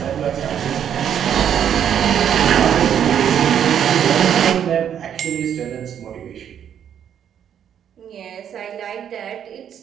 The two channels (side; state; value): left; quieter; 9.1 dB